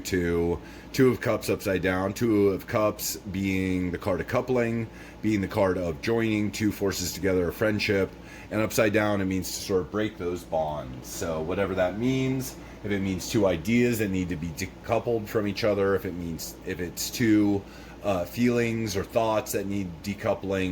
Two of Cups upside down. Two of Cups being the card of coupling, being the card of joining two forces together, a friendship. And upside down, it means to sort of break those bonds. So whatever that means, if it means two ideas that need to be decoupled from each other, if it's two feelings or thoughts that need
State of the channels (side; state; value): both; identical; correlation 1.00